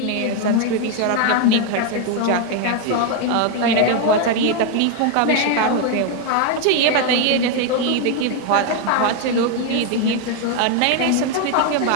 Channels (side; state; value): both; different; correlation 0.01